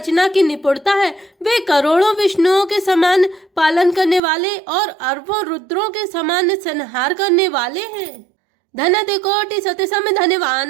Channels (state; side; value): drops out; left; at 4.2 s